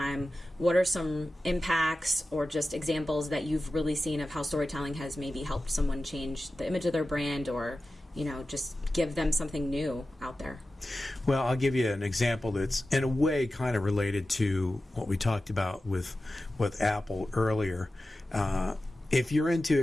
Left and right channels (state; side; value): normal; both; correlation 0.94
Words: What are some impacts or just examples that you've really seen of how storytelling has maybe helped someone change the image of their brand, or, just give them something new out there? Well, I'll give you an example that's in a way kind of related to what we talked about with Apple earlier. If you're into